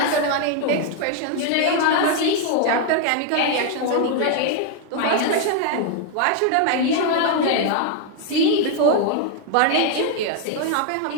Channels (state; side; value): different; both; correlation 0.00